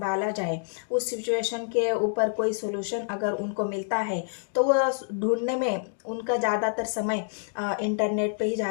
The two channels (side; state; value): right; silent; digital silence